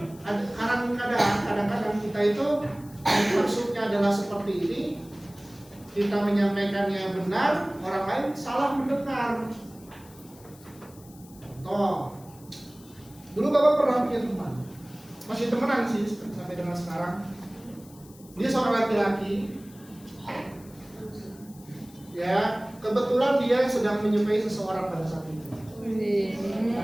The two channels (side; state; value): left; noise; hiss, 24 dB below the sound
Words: kadang-kadang kita itu maksudnya adalah seperti ini, kita menyampaikannya benar, orang lain salah mendengar. Contoh, dulu Bapak pernah punya teman, masih temenan sih sampai dengan sekarang. Dia seorang laki-laki, ya kebetulan dia sedang menyukai seseorang pada saat itu.